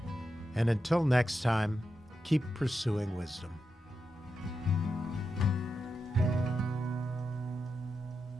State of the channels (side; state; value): both; normal; correlation 0.88